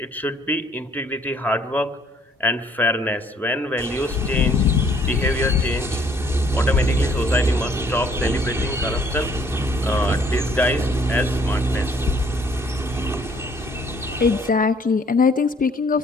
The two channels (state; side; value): normal; both; correlation 0.62